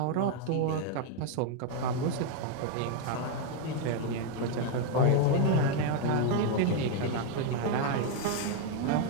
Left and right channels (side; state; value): both; different; correlation 0.01